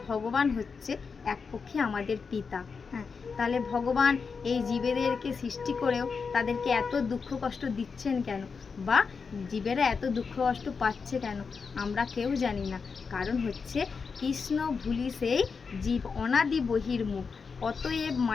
ভগবান হচ্ছে এক পক্ষে আমাদের পিতা। হ্যাঁ, তাহলে ভগবান এই জীবেদেরকে সৃষ্টি করেও তাদেরকে এত দুঃখ কষ্ট দিচ্ছেন কেন, বা জীবেরা এত দুঃখ কষ্ট পাচ্ছে কেন, আমরা কেউ জানি না। কারণ হচ্ছে কৃষ্ণ ভুলি সেই জীব অনাদি বহির্মুখ, অতএব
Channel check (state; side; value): quieter; right; 5.3 dB